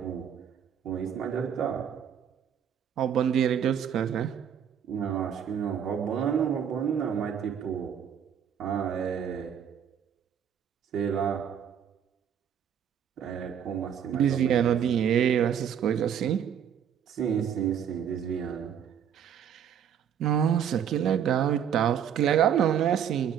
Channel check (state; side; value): quieter; left; 8.6 dB